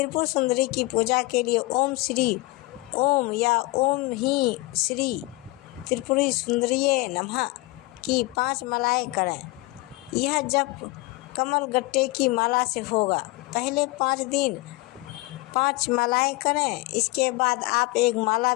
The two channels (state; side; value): quieter; right; 22.7 dB